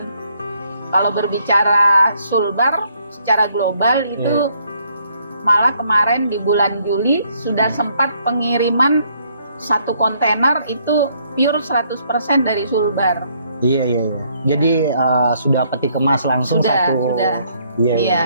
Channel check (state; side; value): inverted; both; correlation -0.68